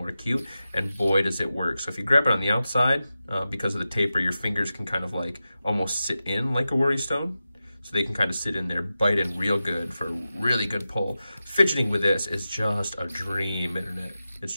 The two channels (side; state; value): both; inverted; correlation -0.93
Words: acute, and boy, does it work. So if you grab it on the outside, because of the taper, your fingers can kind of like almost sit in like a worry stone. So they can kind of sit in there, bite in real good for a really good pull. Fidgeting with this is just a dream, internet. It's